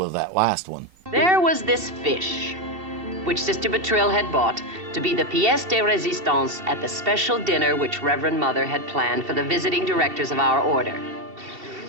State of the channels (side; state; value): left; late; 2.7 ms